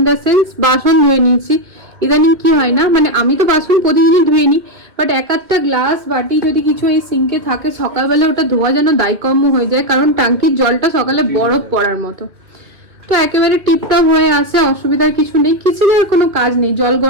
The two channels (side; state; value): left; late; 2.2 ms